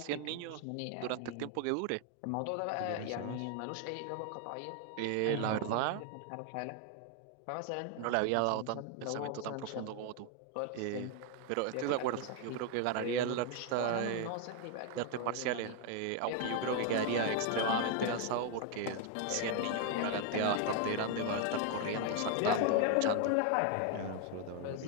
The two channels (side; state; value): both; different; correlation 0.01